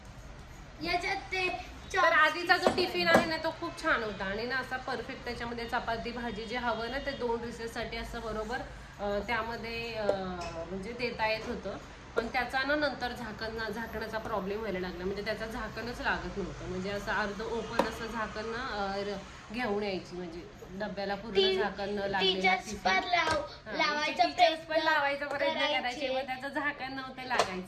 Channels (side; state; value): both; identical; correlation 1.00